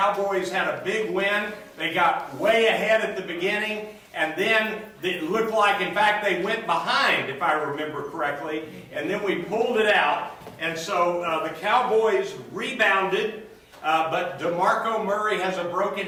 had a big win. They got way ahead at the beginning, and then it looked like, in fact, they went behind, if I remember correctly, and then we pulled it out. And so the Cowboys rebounded, but DeMarco Murray has a broken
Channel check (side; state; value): both; identical; correlation 1.00